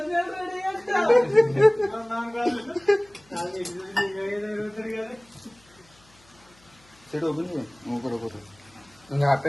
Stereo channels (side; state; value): left; noise; hum, 29 dB below the sound